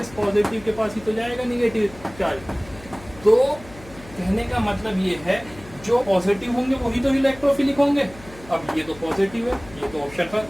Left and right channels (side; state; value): left; noise; hum, 19 dB below the sound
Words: पॉजिटिव के पास ही तो जाएगा निगेटिव चार्ज। तो कहने का मतलब ये है जो पॉजिटिव होंगे वही तो इलेक्ट्रोफिलिक होंगे। अब ये तो पॉजिटिव है, ये तो ऑप्शन पर